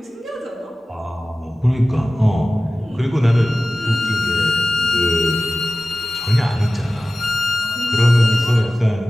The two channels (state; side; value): normal; both; correlation 0.96